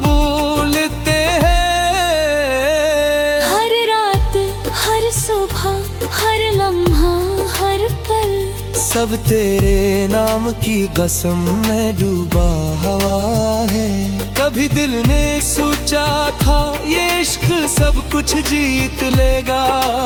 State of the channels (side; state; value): both; identical; correlation 1.00